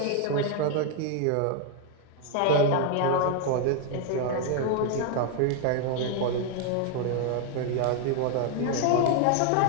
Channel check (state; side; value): different; both; correlation 0.01